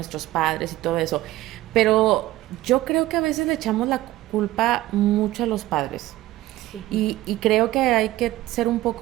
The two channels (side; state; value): left; quieter; 16.3 dB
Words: padres y todo eso, pero yo creo que a veces le echamos la culpa mucho a los padres. Y creo que hay que ser un